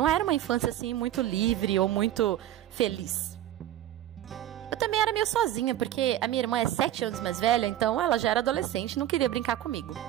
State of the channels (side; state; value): left; quieter; 12.6 dB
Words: era uma infância assim muito livre ou muito feliz. Eu também era meio sozinha, porque a minha irmã é 7 anos mais velha, então ela já era adolescente e não queria brincar comigo.